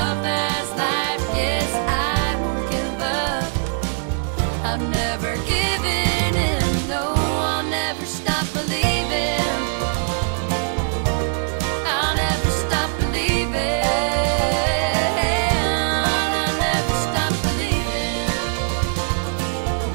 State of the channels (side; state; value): left; silent; digital silence